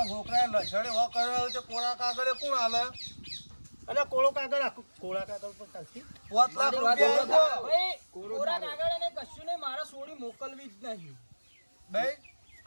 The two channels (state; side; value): inverted; both; correlation -1.00